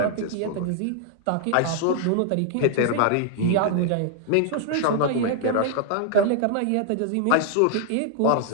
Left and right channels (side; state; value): both; different; correlation -0.01